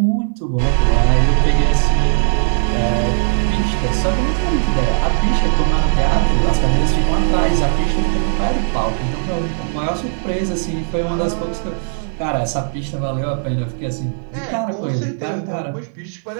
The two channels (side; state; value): left; silent; 58 dB below the other